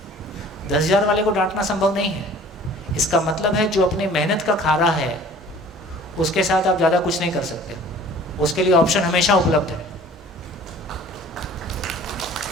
10,000 वाले को डांटना संभव नहीं है। इसका मतलब है जो अपनी मेहनत का खा रहा है उसके साथ आप ज़्यादा कुछ नहीं कर सकते, उसके लिए ऑप्शन हमेशा उपलब्ध है।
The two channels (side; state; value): both; normal; correlation 0.48